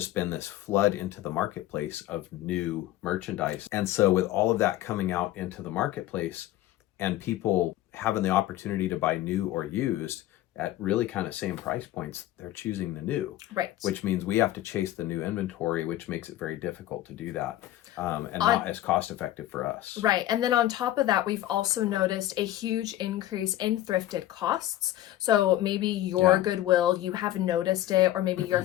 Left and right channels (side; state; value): right; quieter; 14.1 dB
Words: been this flood into the marketplace of new merchandise. And so with all of that coming out into the marketplace and people having the opportunity to buy new or used at really kind of same price points, they're choosing the new. Right. Which means we have to chase the new inventory, which makes it very difficult to do that. And not as cost effective for us. Right. And then on top of that, we've also noticed a huge increase in thrifted costs. So maybe your Goodwill, you have noticed it, or maybe your